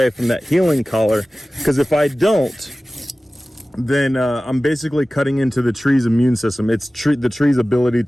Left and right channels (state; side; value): normal; both; correlation 0.97